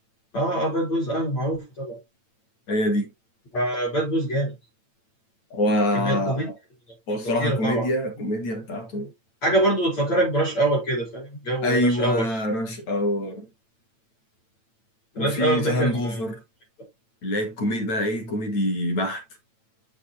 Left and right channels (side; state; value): right; late; 8.9 ms